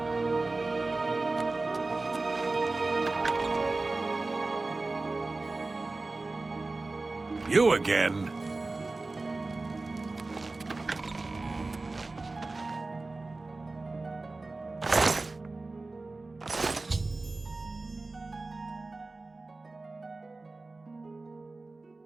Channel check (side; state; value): left; quieter; 3.4 dB